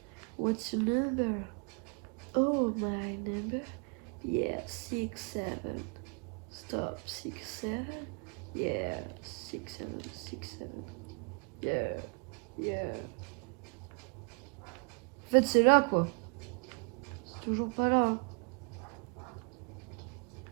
What's your number? Oh, my number? Yeah, 67. Stop, 67. Yeah, 67, 67. Yeah, yeah. En fait, c'est là, quoi. C'est toujours pas là. Hein.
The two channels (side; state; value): left; quieter; 38.0 dB